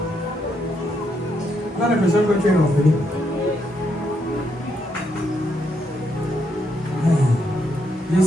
Tu as l'impression que tu es orphelin. Je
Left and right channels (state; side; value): normal; both; correlation 0.77